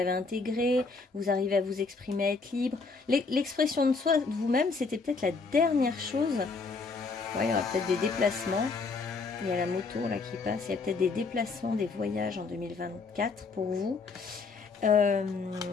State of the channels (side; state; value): right; quieter; 4.3 dB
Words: intégrée, vous arrivez à vous exprimer, à être libre. L'expression de soi, de vous-même, c'était peut-être la dernière chose. Ouais, il y aura peut-être des déplacements. Il y a la moto là qui passe. Il y a peut-être des déplacements, des voyages en 2024 pour vous.